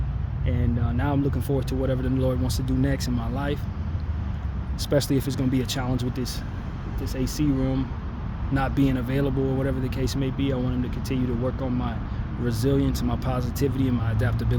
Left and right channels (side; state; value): both; identical; correlation 1.00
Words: And now I'm looking forward to whatever the Lord wants to do next in my life. Especially if it's going to be a challenge with this AC room not being available or whatever the case may be. I want Him to continue to work on my resilience and my positivity and my